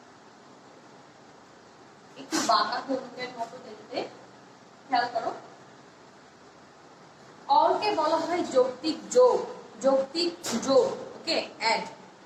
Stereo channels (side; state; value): both; identical; correlation 1.00